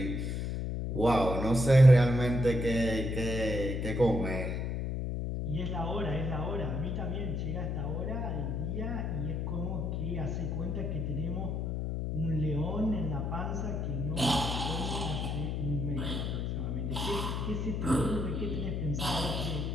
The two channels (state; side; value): noise; left; hum, 1 dB below the sound